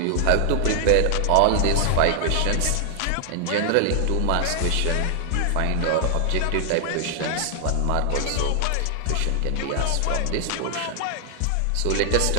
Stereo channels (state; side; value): different; both; correlation 0.00